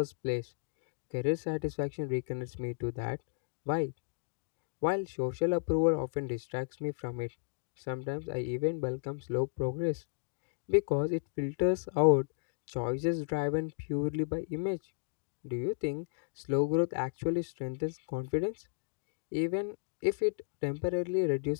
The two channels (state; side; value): silent; right; digital silence